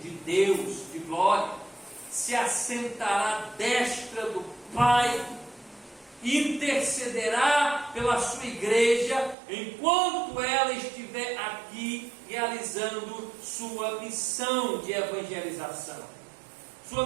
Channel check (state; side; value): drops out; left; at 9.3 s